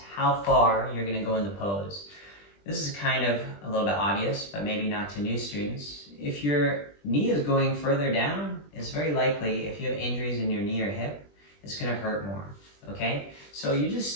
how far you're going to go in the pose. This is kind of a little bit obvious, but maybe not to new students. If your knee is going further down, it's very likely if you have injuries in your knee or hip, it's going to hurt more, okay? So you just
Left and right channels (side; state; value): right; late; 20 ms